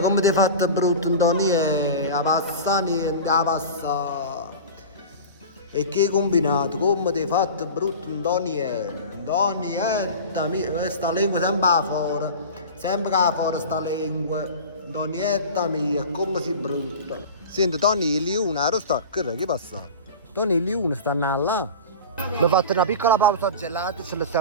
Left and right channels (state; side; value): inverted; both; correlation -0.32